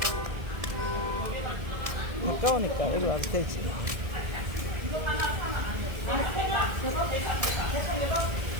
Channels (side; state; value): left; late; 1.8 ms